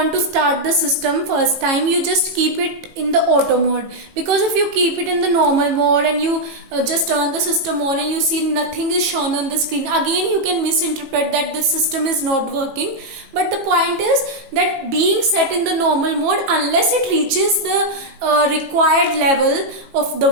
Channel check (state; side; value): late; left; 18 ms